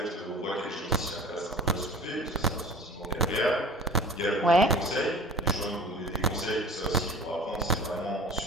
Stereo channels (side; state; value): both; normal; correlation 0.42